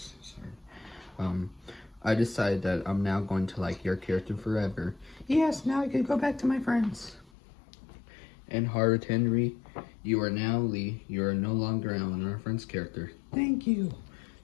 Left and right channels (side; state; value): right; drops out; at 7.3 s